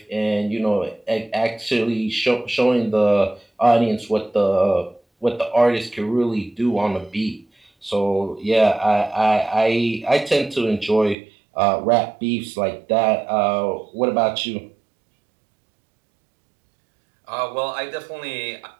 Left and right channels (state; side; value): drops out; left; at 11.2 s